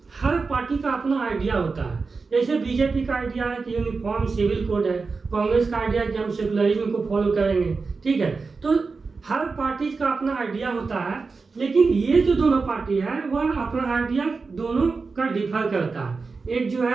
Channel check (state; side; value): quieter; left; 4.4 dB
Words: हर पार्टी का अपना आइडिया होता है। जैसे बीजेपी का आइडिया है कि यूनिफॉर्म सिविल कोड है, कांग्रेस का आइडिया है कि हम सेकुलरिज्म को फॉलो करेंगे, ठीक है। तो हर पार्टी का अपना आइडिया होता है, लेकिन ये जो दोनों पार्टी है वह अपना आइडिया दोनों का डिफर करता है। एक जो